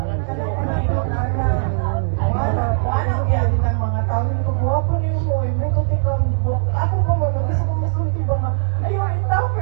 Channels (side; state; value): left; silent; digital silence